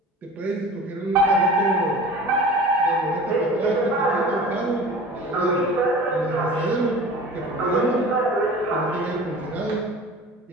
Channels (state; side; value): normal; both; correlation 0.39